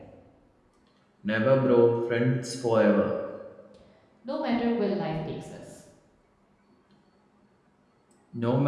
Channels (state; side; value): identical; both; correlation 1.00